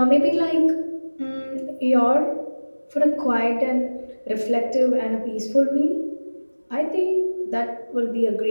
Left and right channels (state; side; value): inverted; both; correlation -1.00